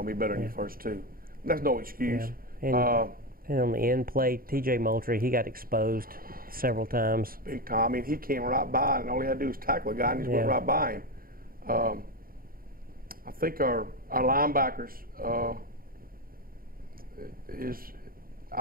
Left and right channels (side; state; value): left; late; 0.42 ms